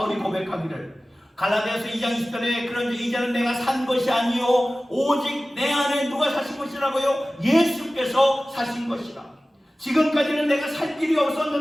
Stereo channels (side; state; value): both; normal; correlation 0.97